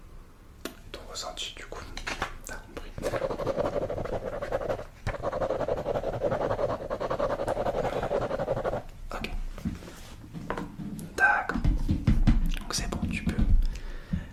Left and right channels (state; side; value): identical; both; correlation 1.00